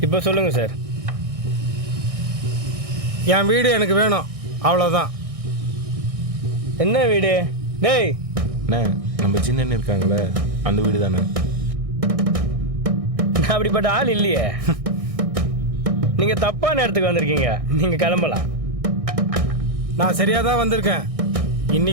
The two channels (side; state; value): left; late; 1.6 ms